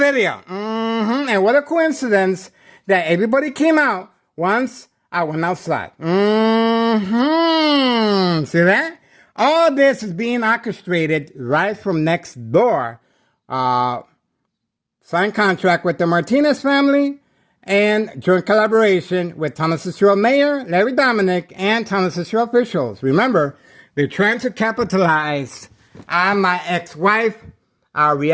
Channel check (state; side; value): identical; both; correlation 1.00